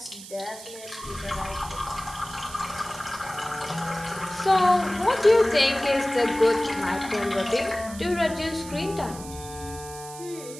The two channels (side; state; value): right; noise; hiss, 14 dB below the sound